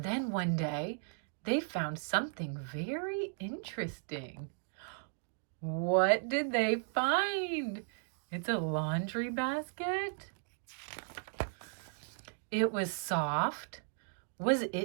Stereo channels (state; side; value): silent; left; digital silence